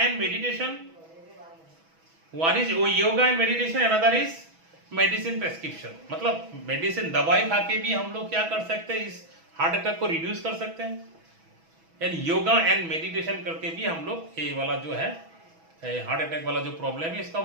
meditation, another is medicine prescription मतलब मेडिसिन दवाई खा के भी हम लोग क्या कर सकते हैं इस हार्ट अटैक को रिड्यूस कर सकते हैं एंड योगा एंड मेडिटेशन करके भी हम लोग ये वाला जो है हार्ट अटैक वाला जो प्रॉब्लम है इसको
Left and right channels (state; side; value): late; left; 6.1 ms